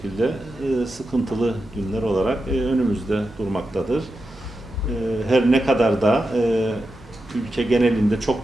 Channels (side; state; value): both; normal; correlation 0.89